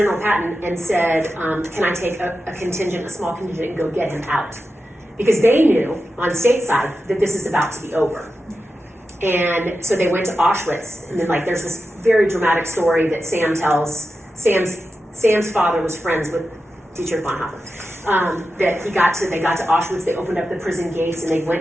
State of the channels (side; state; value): both; normal; correlation 0.91